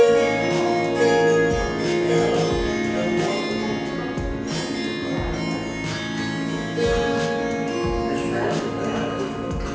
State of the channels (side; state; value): both; identical; correlation 1.00